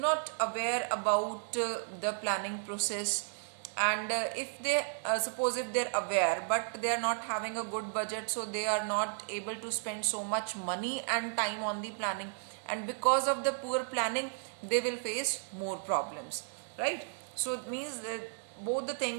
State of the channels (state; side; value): silent; left; digital silence